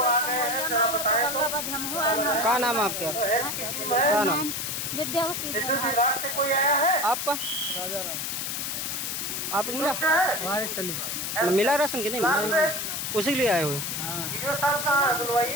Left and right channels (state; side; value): noise; left; hiss, 3 dB below the sound